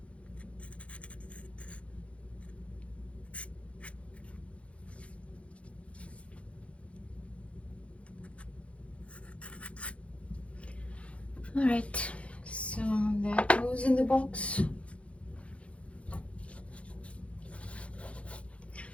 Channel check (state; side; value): late; right; 0.062 ms